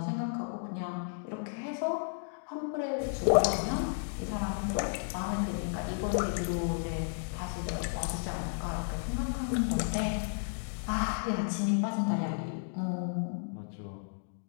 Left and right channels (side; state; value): right; silent; digital silence